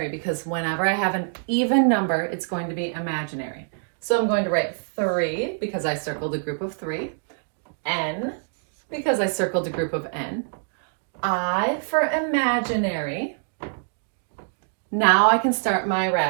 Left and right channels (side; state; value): left; silent; digital silence